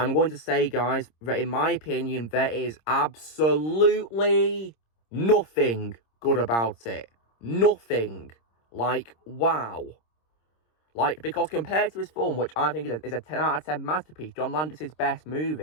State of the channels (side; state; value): right; late; 26 ms